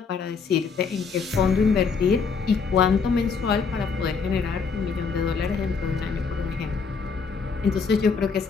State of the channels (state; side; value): quieter; right; 5.3 dB